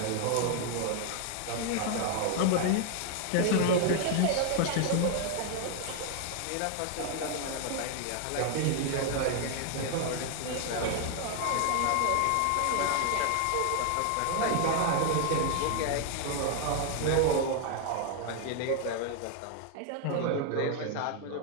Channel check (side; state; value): both; different; correlation 0.00